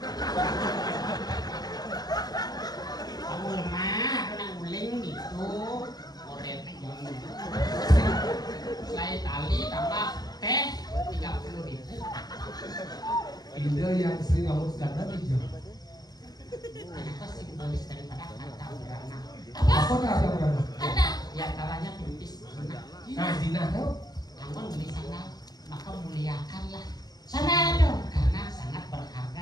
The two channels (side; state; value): right; late; 0.19 ms